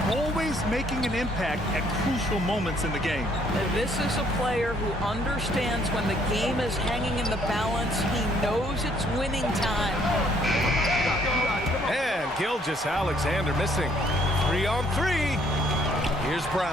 Always making an impact at crucial moments in the game. This is a player who understands when the game is hanging in the balance. He knows it's winning time. And Gilgeous-Alexander missing. 3-on-3. Here's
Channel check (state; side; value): normal; both; correlation 0.65